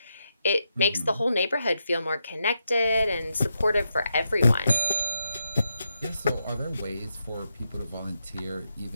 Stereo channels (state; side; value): inverted; both; correlation -0.84